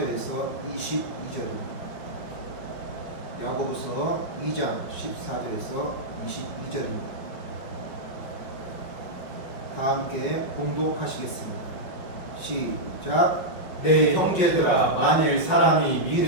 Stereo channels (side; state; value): right; late; 5.3 ms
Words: 22절입니다. 야고보서 2장 14절에서 22절입니다. 다 함께 봉독하시겠습니다. 시작. 내 형제들아, 만일 사람이